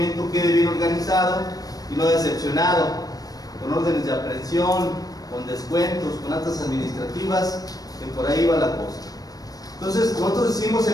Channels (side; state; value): right; late; 0.18 ms